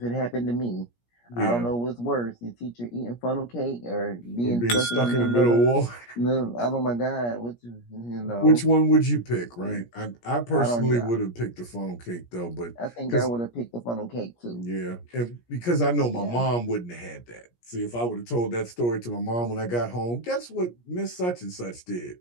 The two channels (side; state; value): right; late; 17 ms